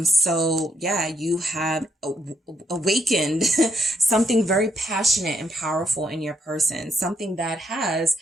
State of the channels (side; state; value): both; normal; correlation 0.76